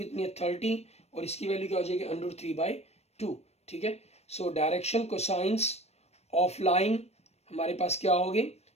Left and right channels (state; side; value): late; right; 0.31 ms